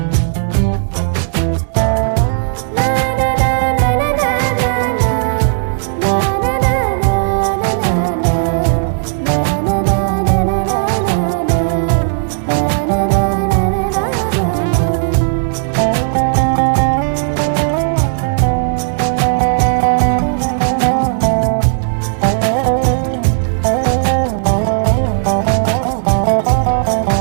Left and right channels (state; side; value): silent; left; digital silence